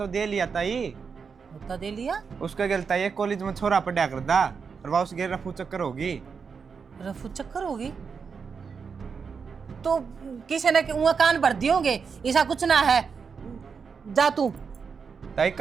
दे लिया ताई। नोता दे लिया? उसका गलता ये कॉलेज में छोरा पढ़ा कर दा और वह उसके रफू चक्कर होगी। रफू चक्कर होगी तो किसी ने वहाँ कान भर दिए होंगे, ऐसा कुछ ना है। जा तू। ताई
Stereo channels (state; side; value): quieter; left; 5.8 dB